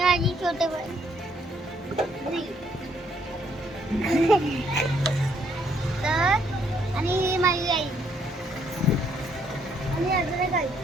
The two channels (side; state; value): both; normal; correlation 0.69